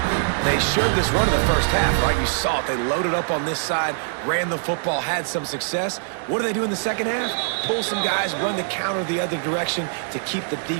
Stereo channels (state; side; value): silent; left; 63 dB below the other